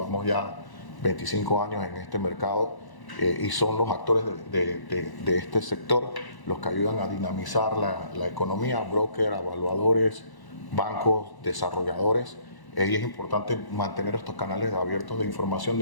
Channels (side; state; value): right; late; 1.1 ms